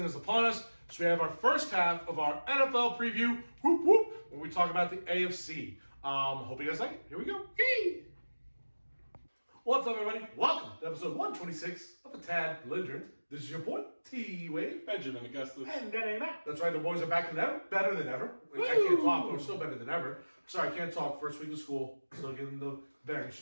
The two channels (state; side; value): inverted; both; correlation -1.00